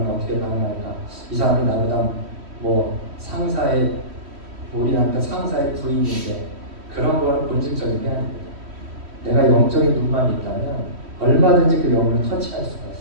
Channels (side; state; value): left; late; 3.1 ms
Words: 어떻게 반응할까? 이 사람이 나보다 뭐 상사의 우리한테 상사의 부인인데 그런 거는 본질적인 게 아닙니다. 내가 영적인 눈만 있다면 얼마든지 그 영혼을 터치할 수가